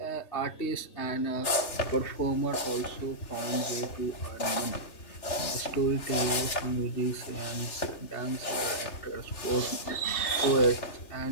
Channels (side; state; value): right; late; 3.2 ms